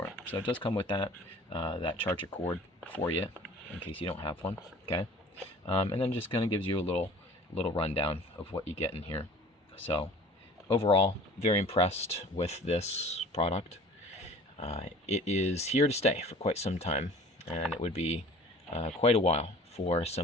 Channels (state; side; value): normal; both; correlation 0.47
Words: it. So it does come with that charger cord for you, in case you don't have one. Okay, and then just kind of gives you a little rundown of what you get in here. So overall, very impressed with this product. It is here to stay for quite some time, and it would be quite a while for